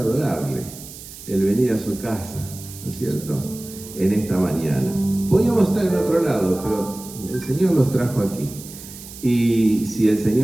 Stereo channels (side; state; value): right; noise; hiss, 15 dB below the sound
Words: adorarle, el venir a su casa, ¿no es cierto?, en esta mañana. Podíamos estar en otro lado, pero el Señor los trajo aquí. Y si el